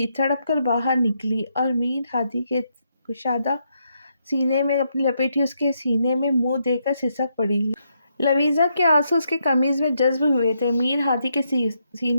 تڑپ کر باہر نکلی اور میر ہادی کے کشادہ سینے میں اپنی لپیٹی اس کے سینے میں منہ دے کر سسک پڑی۔ لویزا کے آنسو اس کے قمیض میں جذب ہوئے تھے۔ میر ہادی کے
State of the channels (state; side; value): inverted; both; correlation -0.79